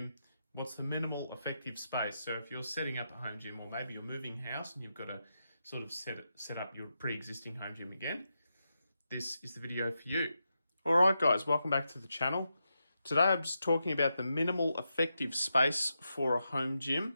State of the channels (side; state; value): both; inverted; correlation -0.86